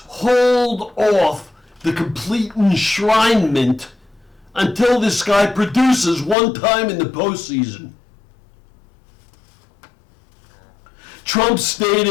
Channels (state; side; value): drops out; right; at 6.4 s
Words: off the complete enshrinement until this guy produces one time in the postseason. Trump